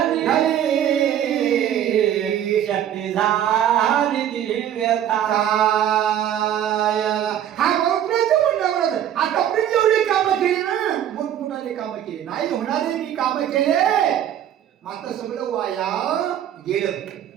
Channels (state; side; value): quieter; left; 10.5 dB